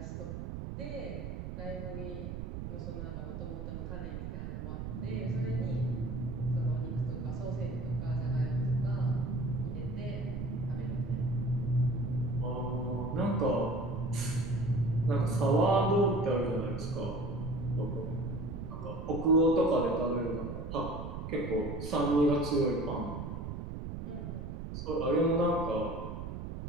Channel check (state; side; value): noise; right; rumble, 6 dB below the sound